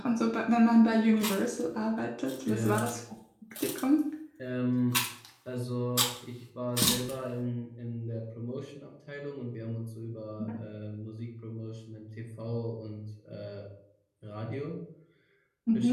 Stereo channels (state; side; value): identical; both; correlation 1.00